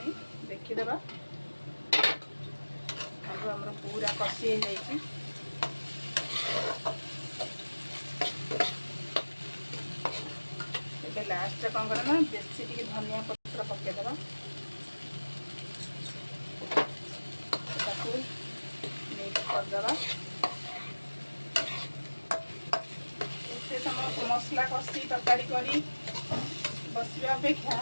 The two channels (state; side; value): inverted; both; correlation -1.00